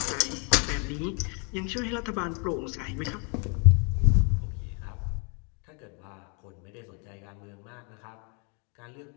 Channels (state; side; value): quieter; right; 36.3 dB